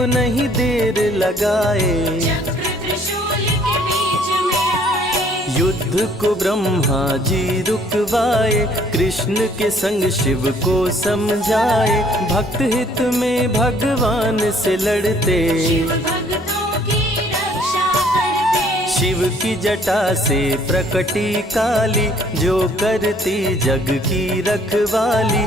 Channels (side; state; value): both; normal; correlation 0.60